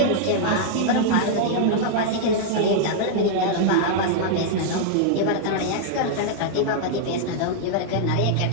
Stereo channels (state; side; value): different; both; correlation -0.01